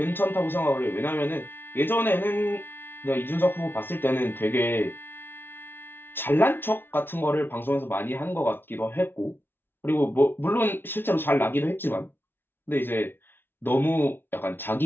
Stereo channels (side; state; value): right; late; 0.10 ms